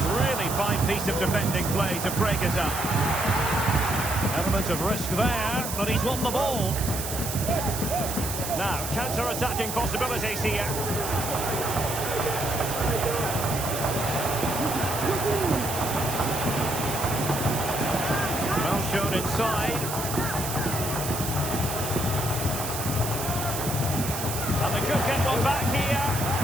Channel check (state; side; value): noise; right; hiss, 5 dB below the sound